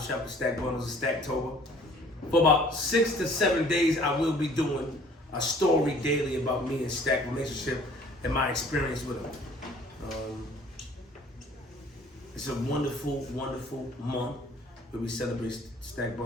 shop with Stack Bundles and Stacktober. For about 6 to 7 days, I will be doing a story daily about me and Stack relationship and my experience with him. It's a wonderful, wonderful month where we celebrate Stack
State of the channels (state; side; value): normal; both; correlation 0.54